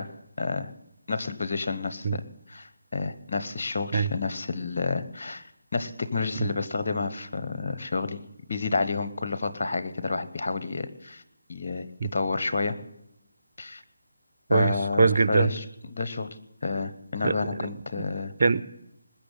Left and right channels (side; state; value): both; inverted; correlation -0.82